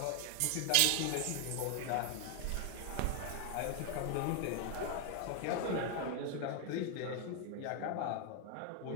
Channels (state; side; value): different; both; correlation 0.00